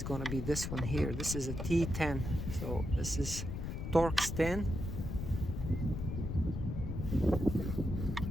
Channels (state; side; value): noise; left; rumble, 4 dB below the sound